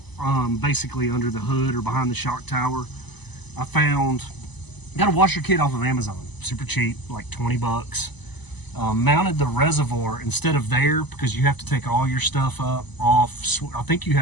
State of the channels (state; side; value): late; right; 0.99 ms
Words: basically under the hood or behind the shock tower, I got a washer kit off of Amazon, super cheap, like 20 bucks. Mounted the reservoir instead of there, because you have to take all your stuff off. I think you